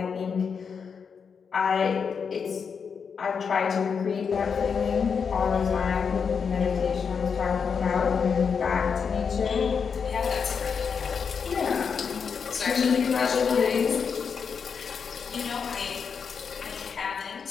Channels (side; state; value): right; quieter; 6.2 dB